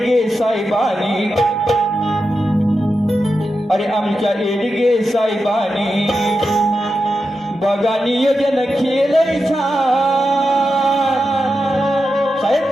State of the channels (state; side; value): normal; both; correlation 0.89